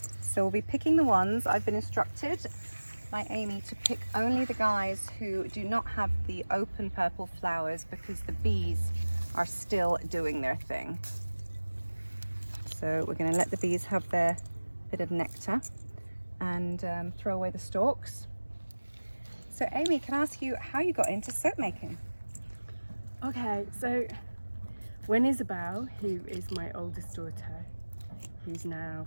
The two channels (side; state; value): both; inverted; correlation -1.00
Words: So we'll be picking the ones. I've been instructed by Amy to pick only the guys who do not have the open purple flowers because the bees are still doing their thing. So we're going to let the bees have their bit of nectar and throw away the stalks. So Amy, can I ask you how you got into soap making? Okay, so when Isabel, who is my oldest daughter, who's now